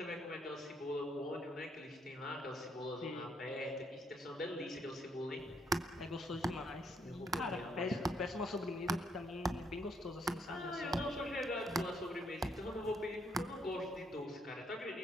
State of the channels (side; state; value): both; normal; correlation 0.72